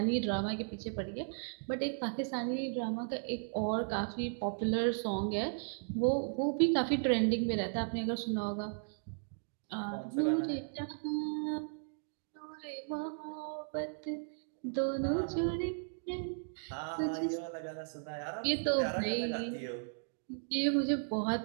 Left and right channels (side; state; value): left; silent; digital silence